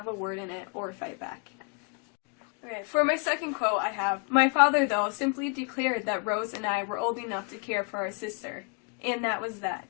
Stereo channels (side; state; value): right; quieter; 37.4 dB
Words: a word in it or fight back. Okay, for my second quote I have, "My father, though, simply declared that Rose and I were old enough to care for our sister, and that was that."